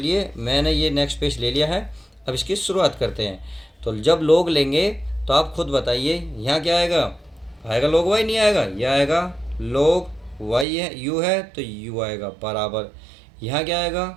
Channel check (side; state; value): left; drops out; at 10.7 s